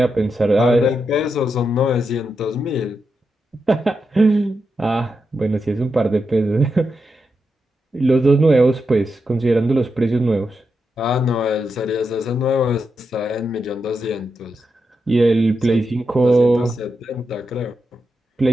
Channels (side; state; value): both; normal; correlation 0.86